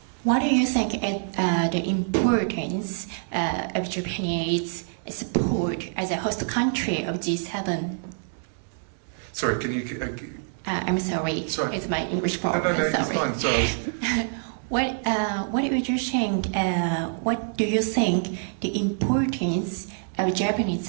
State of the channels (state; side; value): silent; left; digital silence